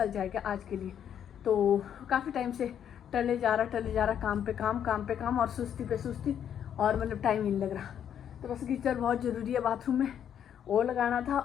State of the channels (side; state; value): right; quieter; 9.2 dB